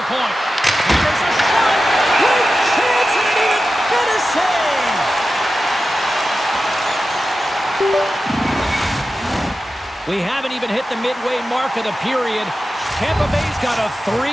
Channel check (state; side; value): normal; both; correlation 0.93